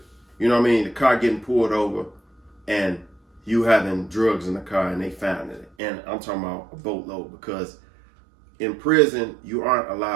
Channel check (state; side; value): drops out; left; at 5.7 s